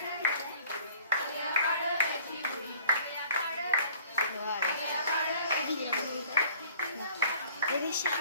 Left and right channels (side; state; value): both; inverted; correlation -0.52